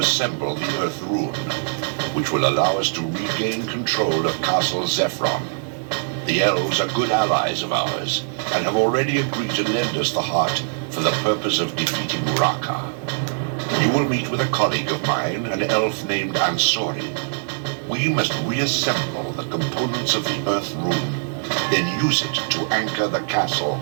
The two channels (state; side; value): silent; left; digital silence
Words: the Earth Rune, which will allow us to regain control of Castle Zephron. The elves are good allies of ours, and have already agreed to lend us the heart for the purpose of defeating Raka. You will meet with a colleague of mine, an elf named Ansori. We must reassemble the components of the Earth Rune, then use it to anchor the castle